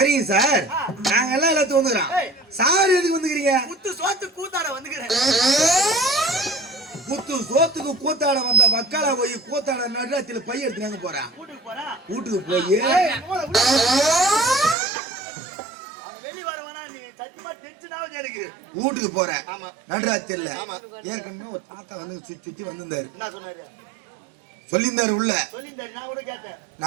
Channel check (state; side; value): drops out; left; at 14.8 s